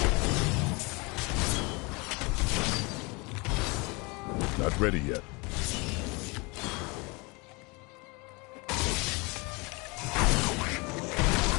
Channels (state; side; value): quieter; right; 27.7 dB